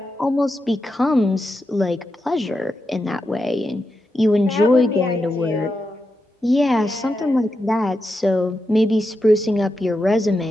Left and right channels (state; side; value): normal; both; correlation 0.87